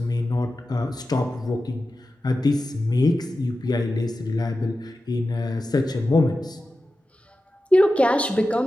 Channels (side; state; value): both; normal; correlation 0.93